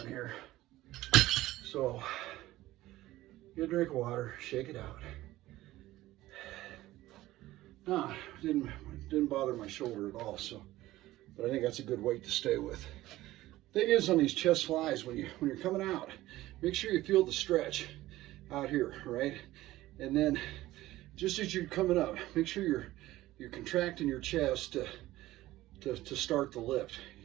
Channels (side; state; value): left; quieter; 16.4 dB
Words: here. So, get a drink of water, shake it out. Nah, didn't bother my shoulder at all, so, but I think that's a good weight to stay with. Thing is, on these chest flies, when you're coming out, make sure you feel the stretch out here, right? And then, just as you're coming up, make sure you're contracting your chest to start the lift,